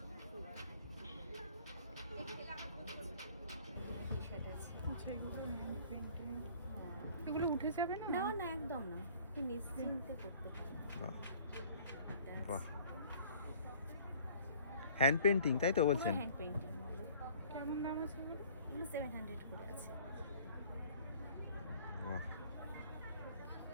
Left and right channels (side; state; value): both; inverted; correlation -0.52